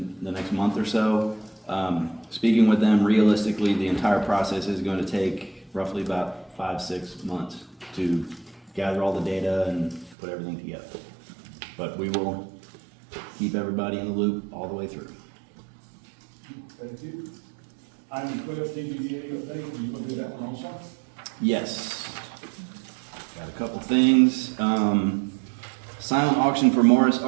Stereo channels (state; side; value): drops out; left; at 10.2 s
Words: the next month or so. Speaking with them, realistically, the entire process is going to take roughly about 5-6 months to gather all the data and put everything together. But we will keep everybody in the loop all the way through. Thank you. Item 12, TBDA update, you gonna do that one also? Yes. Got a couple things. Silent auction for Morris